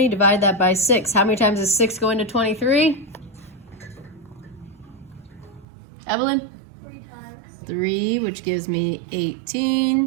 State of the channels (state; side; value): drops out; left; at 5.7 s